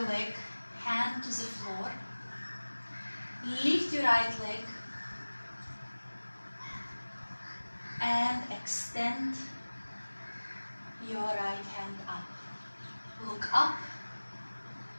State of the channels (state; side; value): inverted; both; correlation -1.00